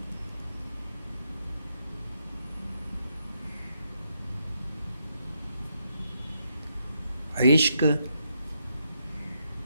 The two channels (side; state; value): both; inverted; correlation -0.79